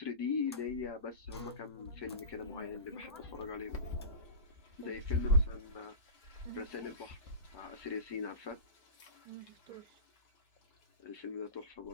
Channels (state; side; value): inverted; both; correlation -0.31